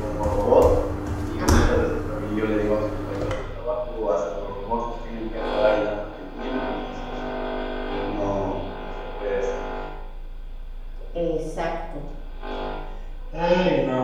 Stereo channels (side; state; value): both; identical; correlation 1.00